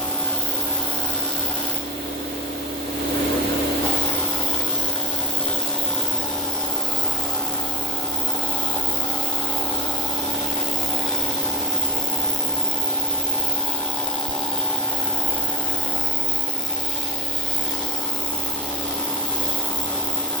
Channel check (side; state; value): both; normal; correlation 0.25